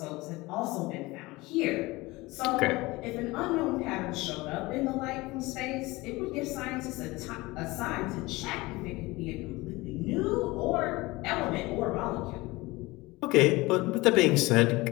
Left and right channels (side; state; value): right; quieter; 21.5 dB